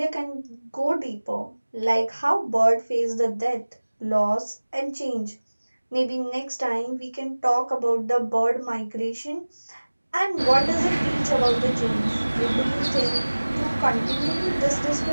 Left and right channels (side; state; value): both; inverted; correlation -1.00